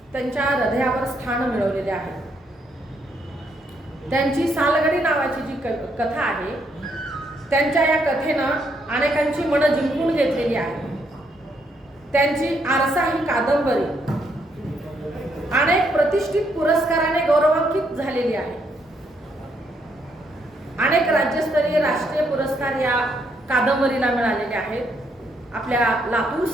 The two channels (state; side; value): normal; both; correlation 0.74